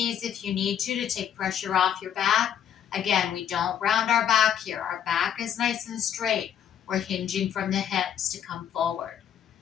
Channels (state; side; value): quieter; right; 9.2 dB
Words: if you need to take pressure off your back. Again, we don't round our back here. Our back is nice and straight. We're hinging from the hips to come forward.